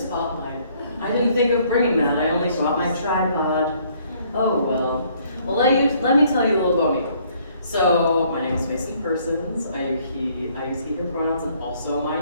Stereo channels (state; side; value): inverted; both; correlation -0.64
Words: I didn't think of bringing that. I only brought my tripod. Oh well. Well, let me tell you a little about me. So, my name is Mason Persons. I use he, him pronouns and also my